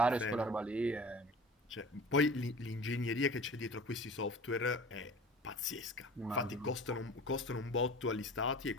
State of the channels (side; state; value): both; normal; correlation 0.41